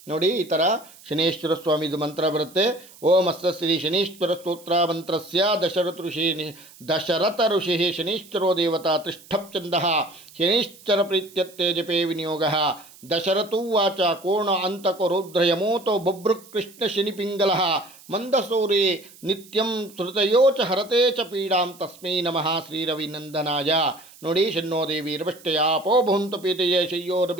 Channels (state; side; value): noise; right; hiss, 23 dB below the sound